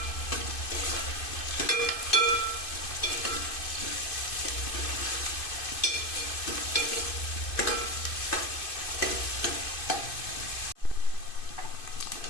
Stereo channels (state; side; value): late; right; 2.5 ms